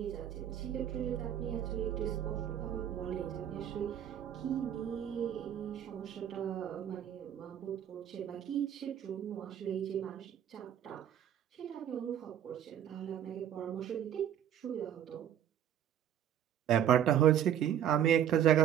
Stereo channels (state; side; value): quieter; left; 10.1 dB